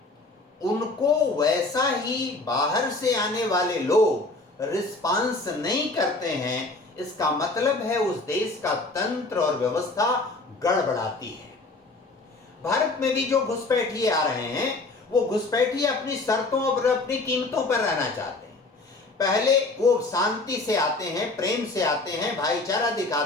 उनको वैसा ही बाहर से आने वाले लोग रिस्पांस नहीं करते हैं, इसका मतलब है उस देश का तंत्र और व्यवस्था गड़बड़ाती है। भारत में भी जो घुसपैठिए आ रहे हैं, वो घुसपैठिए अपनी शर्तों और अपनी कीमतों पर रहना चाहते हैं। पहले वो शांति से आते हैं, प्रेम से आते हैं, भाईचारा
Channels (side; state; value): right; quieter; 3.3 dB